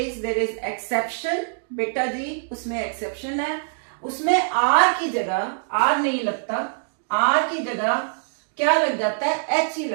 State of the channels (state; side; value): silent; left; digital silence